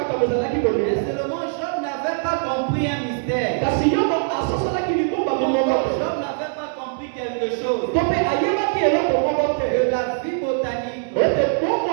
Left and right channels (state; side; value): silent; left; 62 dB below the other